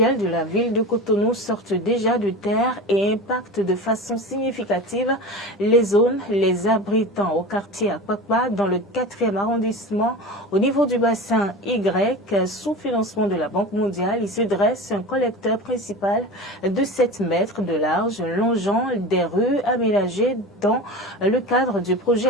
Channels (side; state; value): both; normal; correlation 0.30